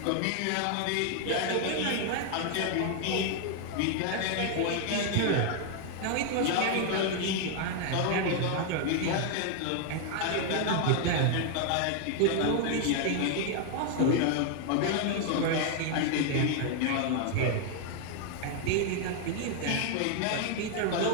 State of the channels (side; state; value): both; different; correlation 0.00